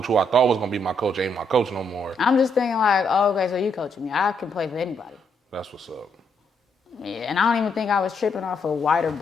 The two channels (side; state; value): both; normal; correlation 0.75